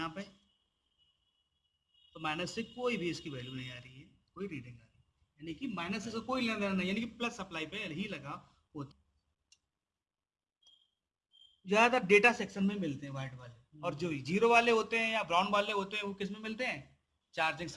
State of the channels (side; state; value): both; identical; correlation 1.00